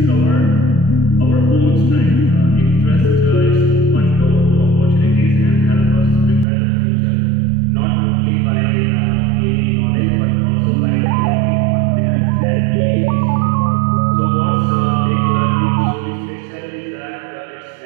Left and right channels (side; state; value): left; drops out; at 6.5 s